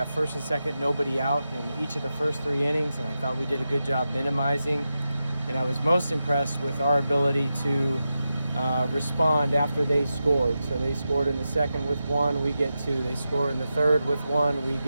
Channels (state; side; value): inverted; both; correlation -0.90